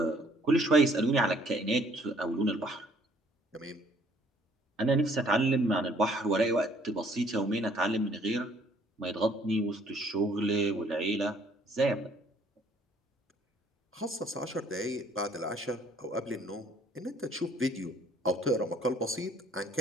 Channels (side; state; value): both; normal; correlation 0.60